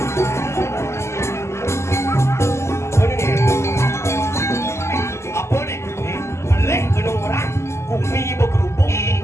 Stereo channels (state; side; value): late; right; 0.13 ms